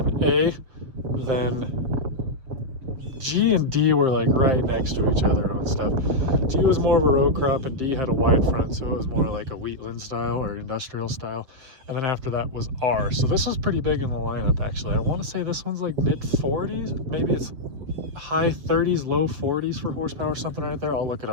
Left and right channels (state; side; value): late; left; 7.4 ms